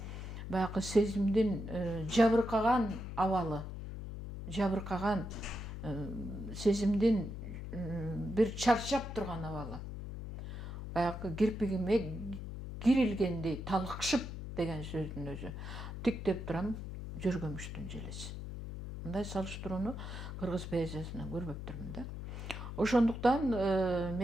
баягы сезимдин жабыркаган абалы, жабыркаган сезимдин бир чарчап турган абалы. Баягы кирпигиме кирилгендей талыкшып деген сөздүн өзү. Тиктеп турам жөргөмүштүн желеси. Мындай салыштырууну кыргыз поэзиясынан көрбөптүрмүн да. Ошондуктан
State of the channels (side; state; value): left; noise; hum, 8 dB below the sound